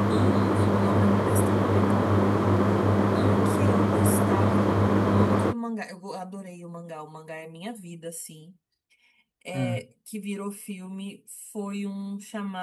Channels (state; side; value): identical; both; correlation 1.00